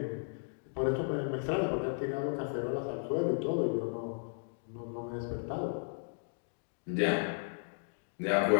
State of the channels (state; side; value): silent; right; digital silence